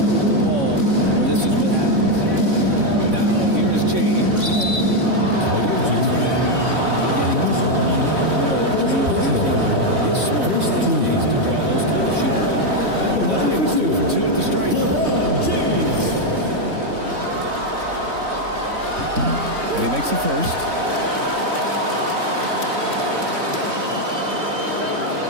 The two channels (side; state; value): left; late; 3.6 ms